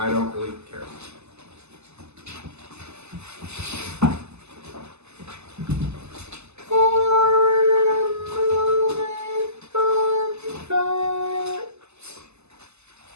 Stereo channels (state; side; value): late; left; 0.80 ms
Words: don't really care.